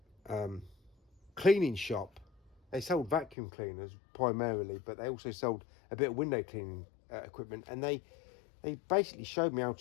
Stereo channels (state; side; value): drops out; right; at 3.4 s